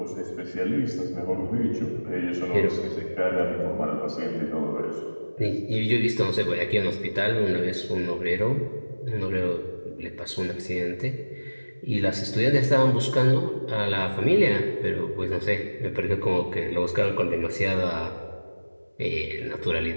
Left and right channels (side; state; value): both; inverted; correlation -1.00